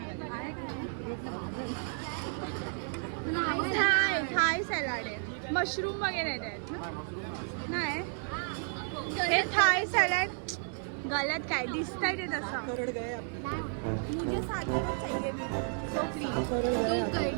थाय सॅलड आहे. मशरूम वगैरे आहेत ना? नाही हे थाय सॅलड गलत काय दिसतंय ते तसं. मुझे साधारण चाहिए सो फ्री.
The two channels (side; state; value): left; silent; 56 dB below the other